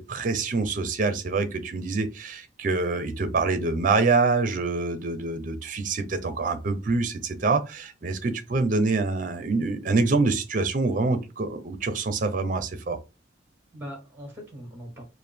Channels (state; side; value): quieter; left; 3.3 dB